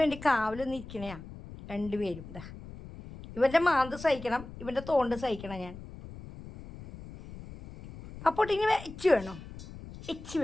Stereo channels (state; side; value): noise; left; rumble, 14 dB below the sound